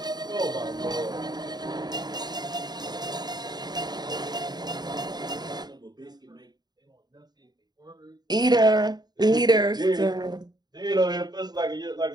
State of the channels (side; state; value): left; late; 0.20 ms